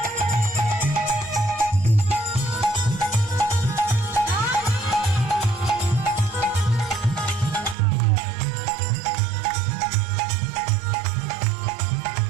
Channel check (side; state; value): left; drops out; at 7.8 s